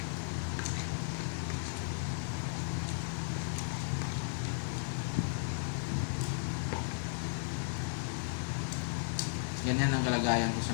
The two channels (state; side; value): silent; right; 54 dB below the other